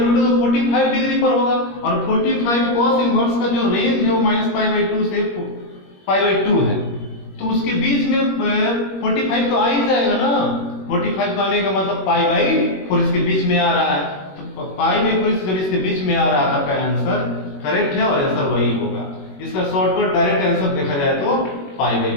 तो 45 डिग्री पर होगा, और 45 cos इनवर्स का जो रेंज है वो -π/2 से π/2 है, तो उसके बीच में 45 तो आ ही जाएगा ना। 45 का आने का मतलब π/4 इसके बीच में आ रहा है, तो π/4 जब इसके बीच में आ रहा है आपका आंसर करेक्ट है और आंसर वही होगा। इसका शॉर्टकट डायरेक्ट आंसर देखा जाए तो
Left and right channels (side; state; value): right; late; 21 ms